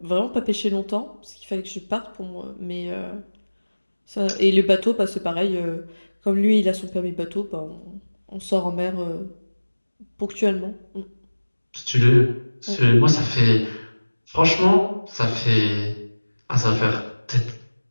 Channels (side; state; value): both; inverted; correlation -1.00